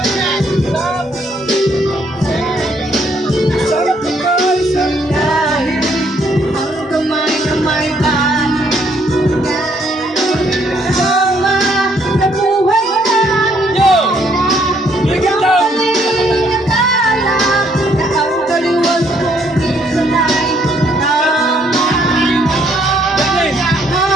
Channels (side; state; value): both; normal; correlation 0.68